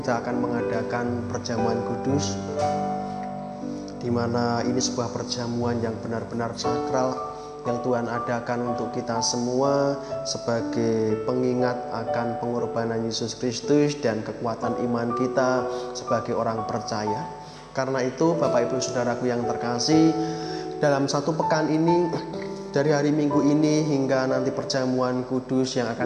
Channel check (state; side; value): identical; both; correlation 1.00